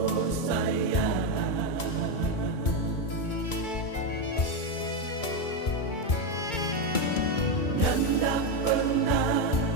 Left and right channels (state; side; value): late; right; 2.2 ms